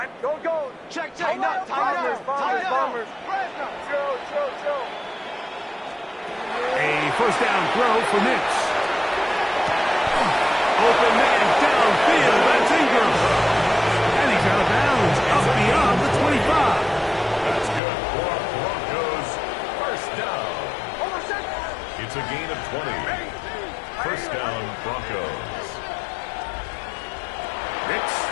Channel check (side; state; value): right; drops out; at 17.8 s